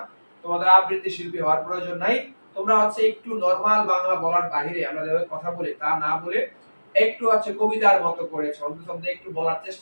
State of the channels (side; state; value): both; inverted; correlation -1.00